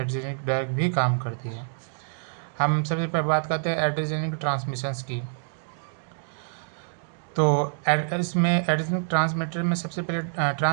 ड्रग भी काम करती है। हम सबसे पहले बात करते हैं एड्रेजेनिक ट्रांसमिशंस की। तो इसमें एड्रेजेनिक ट्रांसमीटर में सबसे पहले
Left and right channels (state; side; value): silent; left; digital silence